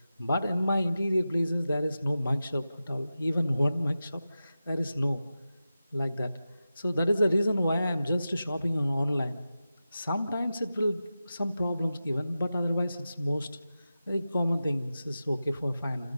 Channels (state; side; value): inverted; both; correlation -0.93